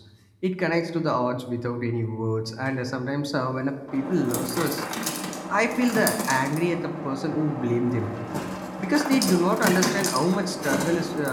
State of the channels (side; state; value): both; identical; correlation 1.00